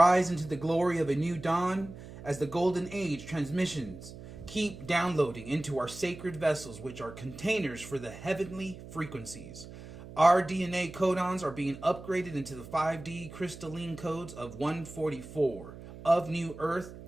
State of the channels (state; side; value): noise; right; hum, 15 dB below the sound